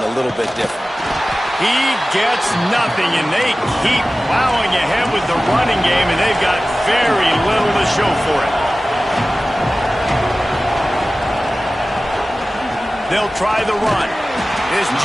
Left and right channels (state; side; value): normal; both; correlation 0.96